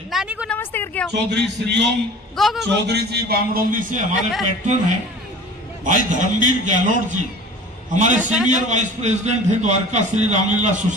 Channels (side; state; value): both; normal; correlation 0.41